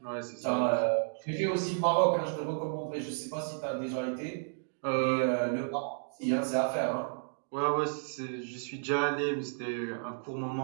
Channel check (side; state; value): left; silent; digital silence